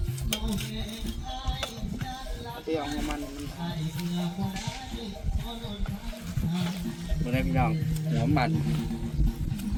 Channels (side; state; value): both; identical; correlation 1.00